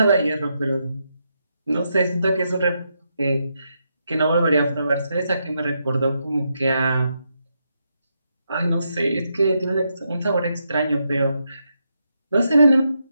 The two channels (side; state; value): both; inverted; correlation -0.82